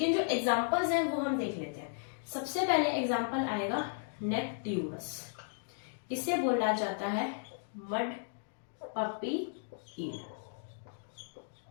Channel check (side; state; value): right; silent; digital silence